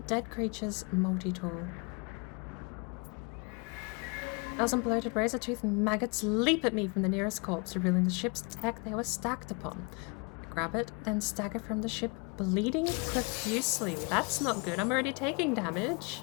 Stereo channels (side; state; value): right; quieter; 32.0 dB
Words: dead creatures, multi-tool. Thousand bloated razor-toothed maggots leap at me from the nearest corpse, revealing the ship's tech they were stacked upon. I grab it, then stagger from the ship, bleeding profusely. That's not good. I'm already taking damage.